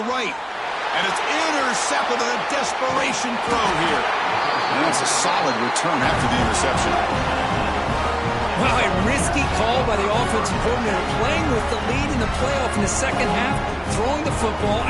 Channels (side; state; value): both; identical; correlation 1.00